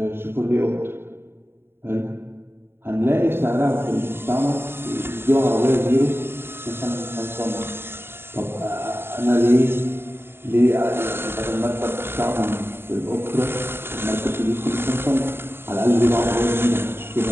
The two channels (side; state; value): left; late; 0.11 ms